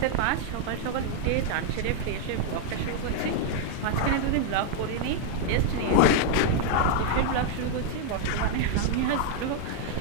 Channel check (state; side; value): different; both; correlation 0.00